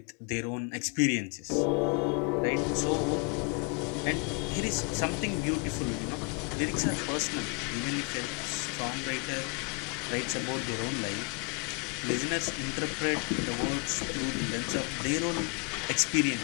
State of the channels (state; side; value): quieter; right; 34.3 dB